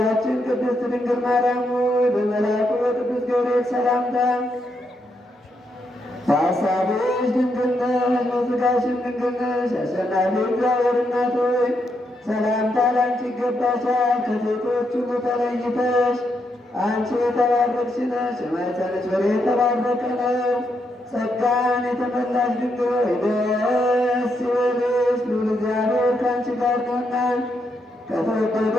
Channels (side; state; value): both; normal; correlation 0.80